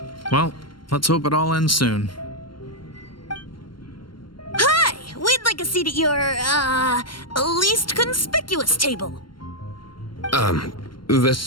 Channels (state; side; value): late; right; 0.72 ms